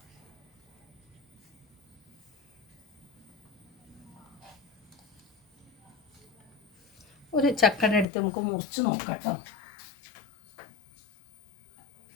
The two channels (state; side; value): drops out; right; at 8.1 s